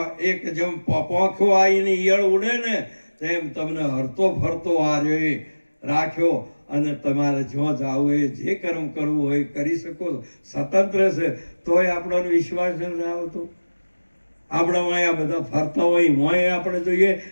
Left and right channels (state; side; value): inverted; both; correlation -1.00